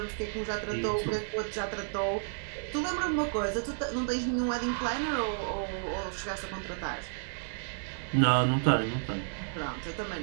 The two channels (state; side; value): silent; left; digital silence